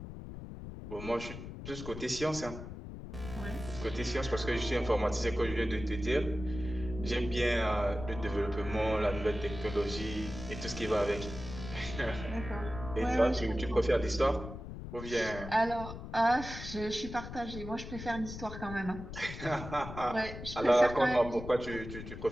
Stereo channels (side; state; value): left; noise; rumble, 10 dB below the sound